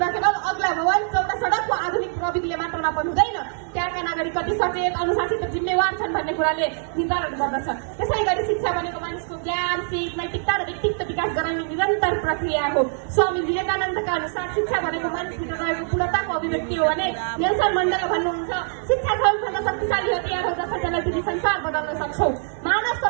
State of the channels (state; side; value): silent; left; 63 dB below the other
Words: केवल अग्ला भवन, चौडा सडक वा आधुनिक प्रविधिले मात्र नाप्नु हुँदैन, त्यहाँका नागरिक कति सचेत, अनुशासित र जिम्मेवार छन् भन्ने कुराले निर्धारण गर्दछ। त्यसै गरी शिक्षा भनेको मानिसको ज्ञान, सिप, नैतिकता र व्यक्तित्व विकास गराउने निरन्तर प्रक्रिया हो। स्वामी विवेकानन्दका अनुसार शिक्षा भनेको मानिसभित्र रहेको पूर्णताको अभिव्यक्ति हो भने नेल्सन मण्डेला भन्नुहुन्छ, शिक्षा सबैभन्दा शक्तिशाली हतियार हो जसले तिमी संसार बदल्न सक्छौ। मानव